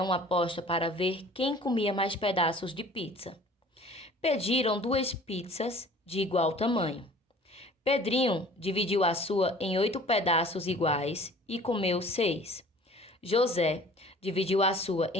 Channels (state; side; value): normal; both; correlation 0.48